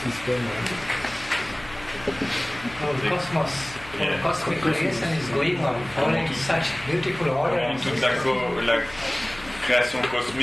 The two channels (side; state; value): left; noise; hum, 18 dB below the sound